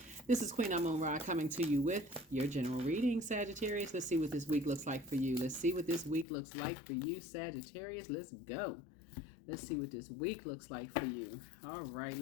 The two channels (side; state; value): right; drops out; at 6.2 s